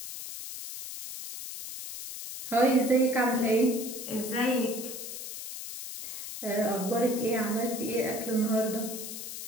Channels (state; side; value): noise; left; hiss, 8 dB below the sound